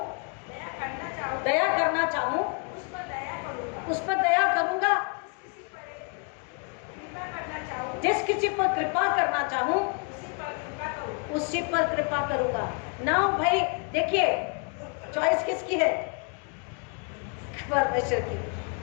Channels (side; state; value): right; quieter; 38.6 dB